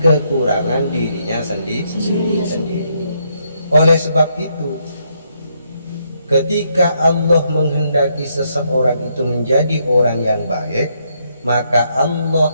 kekurangan dirinya sendiri. Oleh sebab itu, ketika Allah menghendaki seseorang itu menjadi orang yang baik, maka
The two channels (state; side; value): inverted; both; correlation -0.75